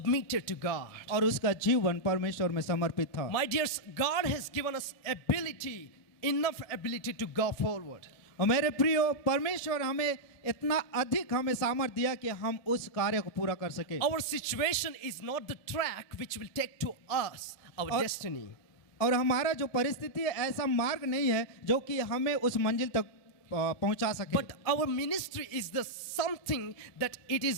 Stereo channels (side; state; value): right; late; 1.8 ms